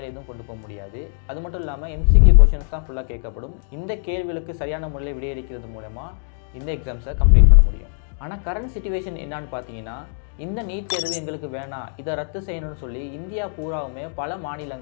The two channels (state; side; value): silent; right; digital silence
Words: எதுவும் கொண்டு போக முடியாது. அது மட்டும் இல்லாமல் MCQ கொஷின்ஸ் தான் ஃபுல்லாக கேட்கப்படும். இந்த கேள்விகளுக்கு சரியான முறையில் விடையளிக்கிறது மூலமாக இந்த எக்ஸாம்ஸை கம்ப்ளீட் பண்ண முடியும். ஆனால் கரண்ட் சிச்சுவேஷன் என்னான்னு பார்த்தீங்கன்னா, இந்த நீட் தேர்வு எங்களுக்கு வேணாம், இதை ரத்து செய்யணும்னு சொல்லி இந்தியா பூராவுமே பல